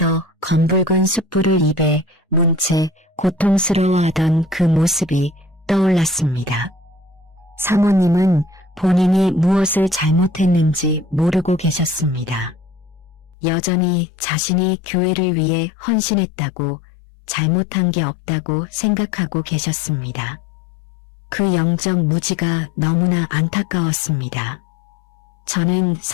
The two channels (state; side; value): drops out; right; at 13.4 s